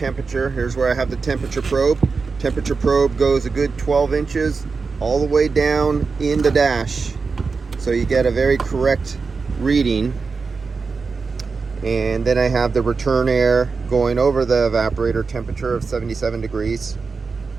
Here's where I have the temperature probe. Temperature probe goes a good 12 inches all the way down in the dash, so you get a very correct reading. And then I have the return air going over the evaporator temperature of 77 degrees.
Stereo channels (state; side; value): quieter; left; 4.6 dB